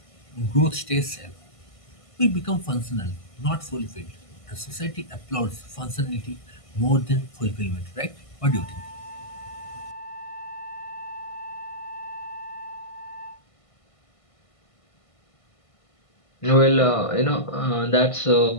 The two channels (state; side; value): late; right; 1.5 ms